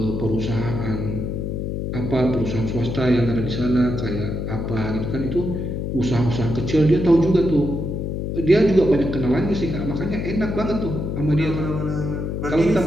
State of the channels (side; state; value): left; noise; hum, 3 dB below the sound